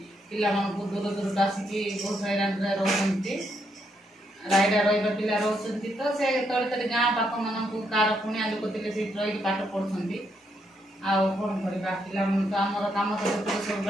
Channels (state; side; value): normal; both; correlation 0.77